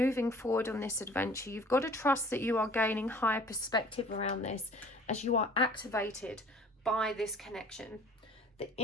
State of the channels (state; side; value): normal; both; correlation 0.51